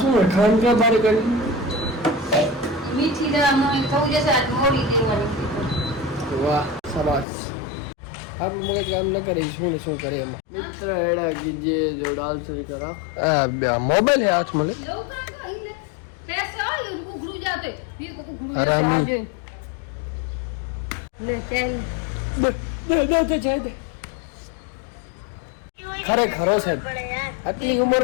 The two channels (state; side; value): drops out; right; at 7.2 s